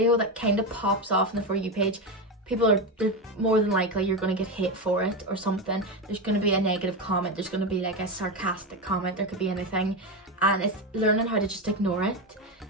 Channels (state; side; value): normal; both; correlation 0.14